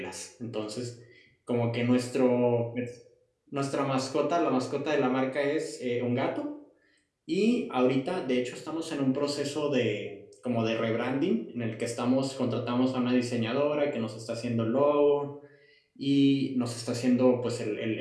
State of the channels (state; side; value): identical; both; correlation 1.00